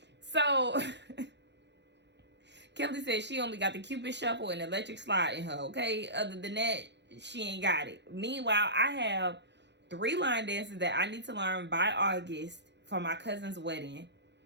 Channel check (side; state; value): left; late; 0.51 ms